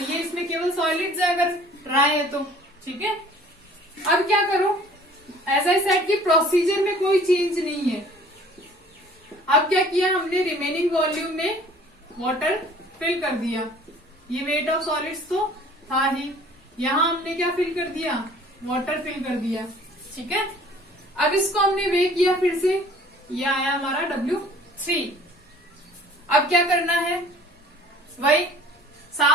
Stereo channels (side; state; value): both; normal; correlation 0.51